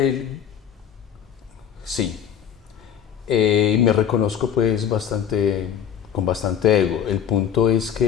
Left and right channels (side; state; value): right; quieter; 8.7 dB